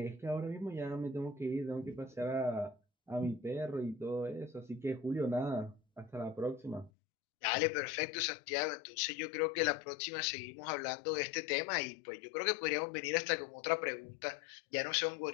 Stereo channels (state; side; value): drops out; right; at 6.9 s